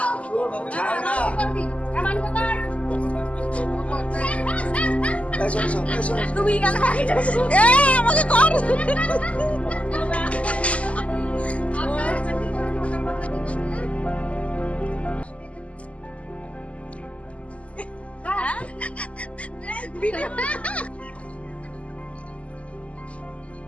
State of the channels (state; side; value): late; right; 0.065 ms